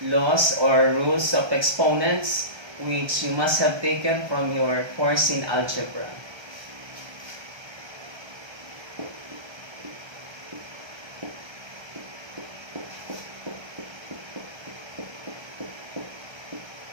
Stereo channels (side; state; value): left; late; 1.3 ms